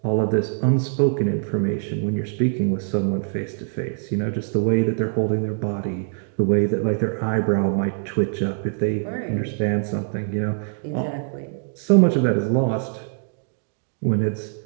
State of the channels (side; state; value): left; silent; 63 dB below the other